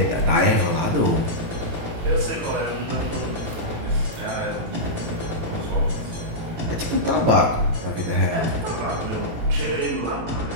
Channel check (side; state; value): left; late; 18 ms